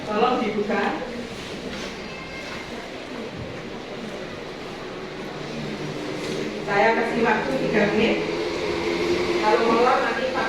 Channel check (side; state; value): both; identical; correlation 1.00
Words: Tolong dibuka. Saya kasih waktu 3 menit. Kalau molor nanti